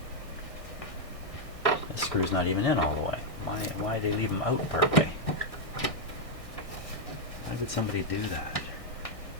This screw's not even in all the way. Why did they leave them out part way? Why would somebody do that?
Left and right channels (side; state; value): right; late; 1.6 ms